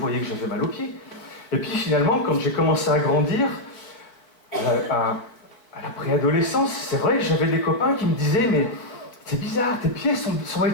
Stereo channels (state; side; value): late; right; 4.4 ms